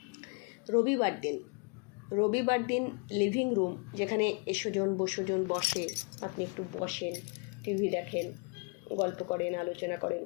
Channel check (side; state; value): right; quieter; 32.7 dB